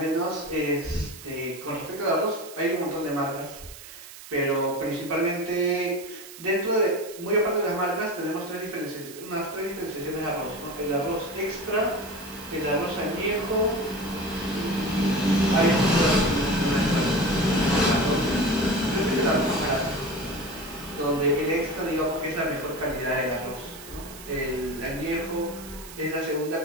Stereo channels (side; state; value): right; noise; hiss, 16 dB below the sound